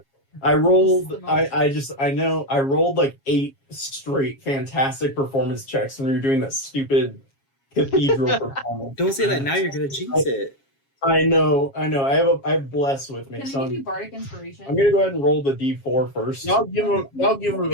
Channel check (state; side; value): late; right; 7.3 ms